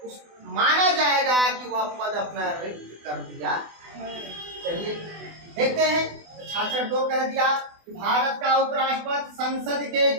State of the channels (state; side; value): late; left; 24 ms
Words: माना जाएगा कि वह पद अपना रिक्त कर दिया। चलिए देखते हैं। 66(2) कह दिया कि भारत का उपराष्ट्रपति संसद के